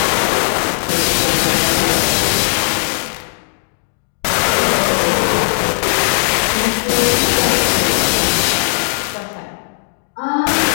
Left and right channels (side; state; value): right; silent; digital silence